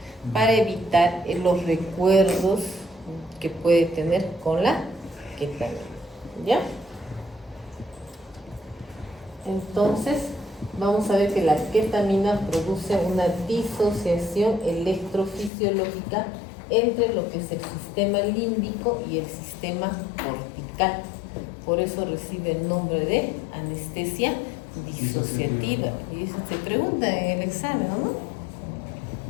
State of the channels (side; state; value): right; drops out; at 15.5 s